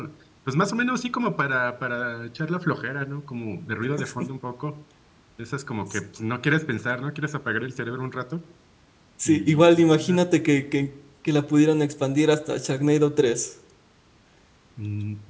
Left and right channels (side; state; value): both; identical; correlation 1.00